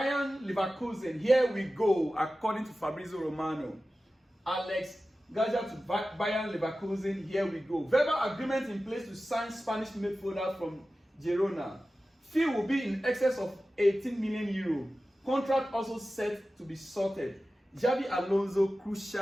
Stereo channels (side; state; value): both; normal; correlation 0.95